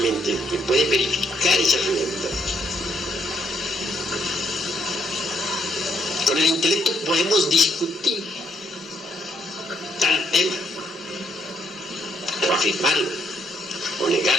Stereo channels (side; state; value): both; normal; correlation 0.71